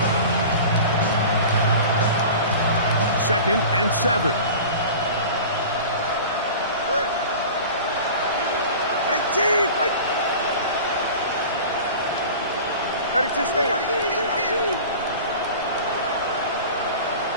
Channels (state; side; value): inverted; both; correlation -0.37